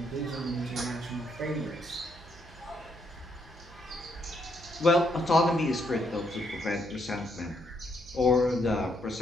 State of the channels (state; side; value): noise; right; hum, 21 dB below the sound